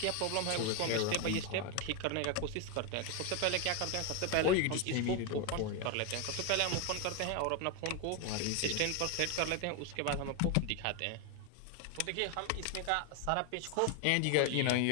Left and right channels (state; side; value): different; both; correlation 0.01